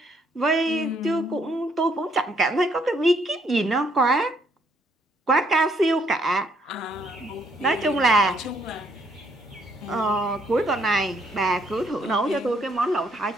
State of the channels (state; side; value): normal; both; correlation 0.70